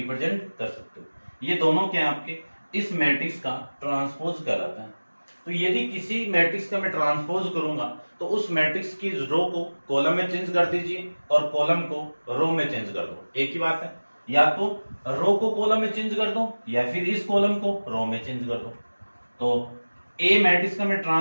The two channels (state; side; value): inverted; both; correlation -1.00